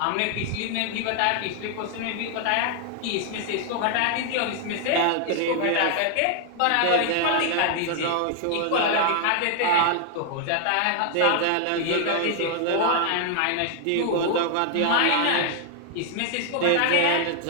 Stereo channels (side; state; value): both; different; correlation 0.00